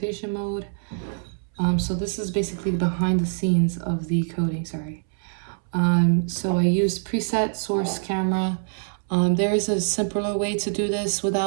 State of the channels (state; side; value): silent; left; 62 dB below the other